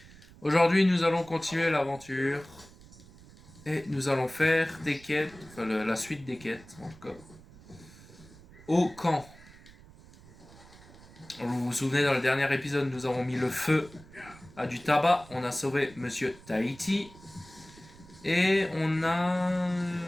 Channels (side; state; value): right; noise; rumble, 22 dB below the sound